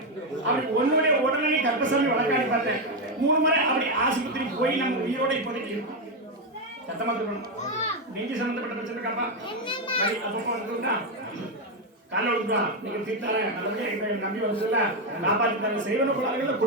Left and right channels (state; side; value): normal; both; correlation 0.06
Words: அப்படி ஒன்னுடைய உடல்நிலை கர்ப்பசாமி வழக்காடி பார்த்தேன் 3 முறை அப்படி ஆஸ்பத்திரி போய் நம்ம உயிரோட இப்போதைக்கு இருக்கும் சத்தமா சொல்லணும் நெஞ்சு சம்பந்தப்பட்ட பிரச்சனை காப்பா அப்பப்போ வந்துட்டா காலை விட்டுவா நீங்க தீர்த்தார நல்லபடியா எங்களை நம்பி வந்துல காப்பாற்றிட்டாங்க செய்வன கோளாறுகள்